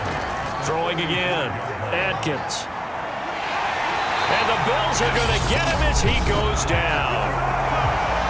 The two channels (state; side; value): identical; both; correlation 1.00